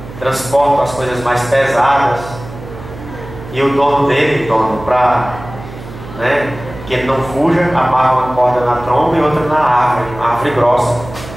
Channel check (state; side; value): noise; right; hum, 14 dB below the sound